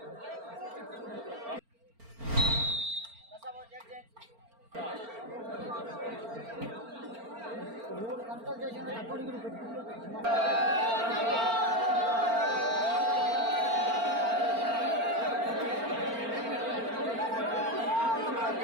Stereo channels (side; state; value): left; late; 4.4 ms